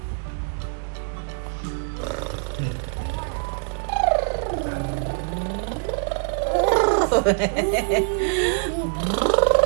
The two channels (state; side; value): silent; left; 63 dB below the other